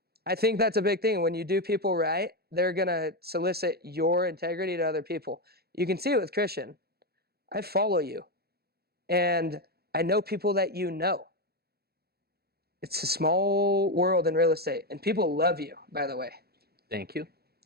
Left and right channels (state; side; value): late; left; 0.46 ms